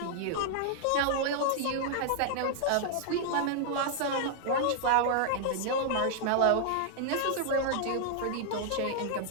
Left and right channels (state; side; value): different; both; correlation -0.01